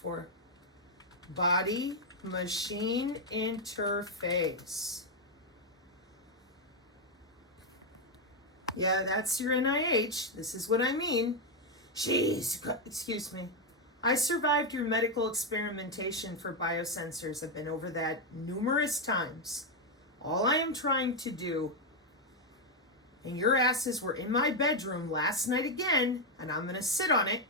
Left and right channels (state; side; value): normal; both; correlation 0.02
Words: Body-machine interface. Yeah, that's your NIH. This is what I mean. Excuse me. I survived your medical experimentation for biosensors. I've been over that numerous times. All I am trying to do, and your asses were in my bedroom last night again, and I'm going to sit on it,